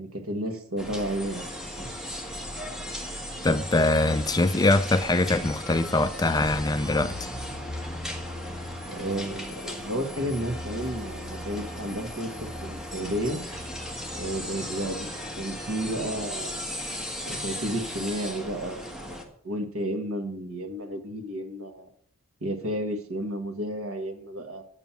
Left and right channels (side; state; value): both; normal; correlation 0.52